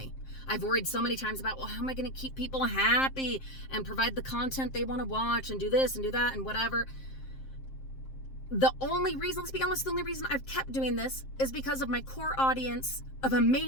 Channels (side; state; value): right; late; 7.6 ms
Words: I've worried so many times about, how am I going to keep people happy and provide the content they want to watch and do this and do that and whatever. The only reason I've kept doing this is because of my core audience of